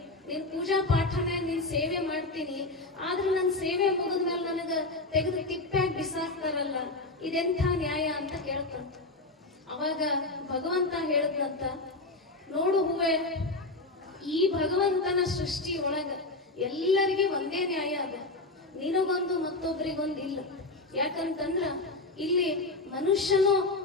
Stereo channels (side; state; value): right; quieter; 3.0 dB